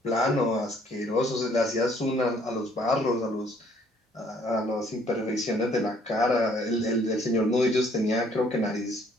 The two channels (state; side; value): normal; both; correlation 0.62